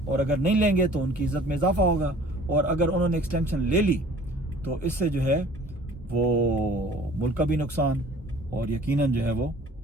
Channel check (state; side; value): normal; both; correlation 0.50